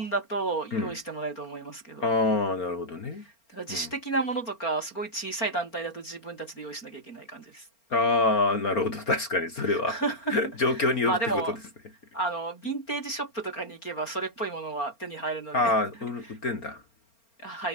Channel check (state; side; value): late; right; 4.4 ms